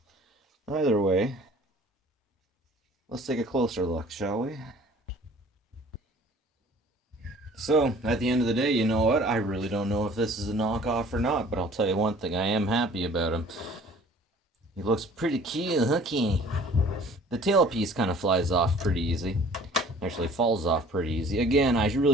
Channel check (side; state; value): both; normal; correlation 0.51